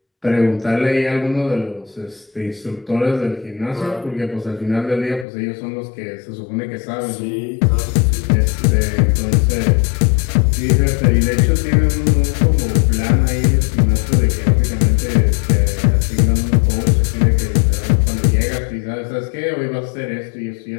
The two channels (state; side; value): drops out; right; at 5.2 s